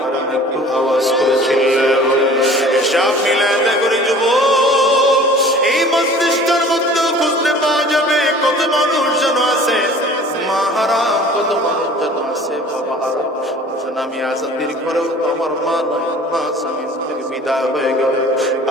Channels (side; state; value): both; normal; correlation 0.47